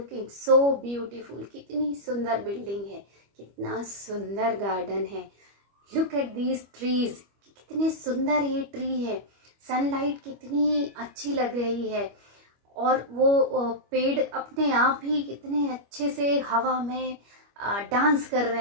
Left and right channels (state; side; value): late; left; 25 ms